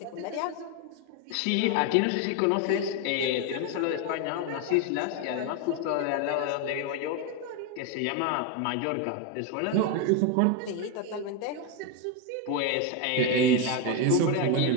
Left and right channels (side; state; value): both; different; correlation 0.02